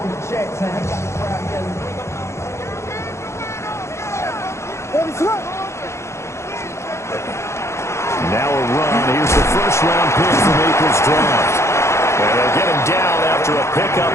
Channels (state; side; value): late; right; 0.13 ms